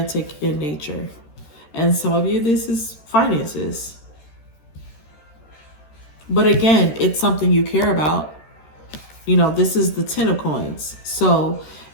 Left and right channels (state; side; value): late; right; 13 ms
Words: in nature. And some of you, this is finances. But again, it's something you care about. This is the 10 of coins. So